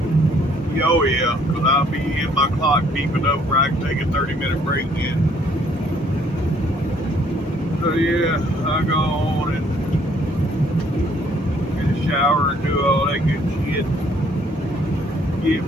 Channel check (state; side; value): normal; both; correlation 0.64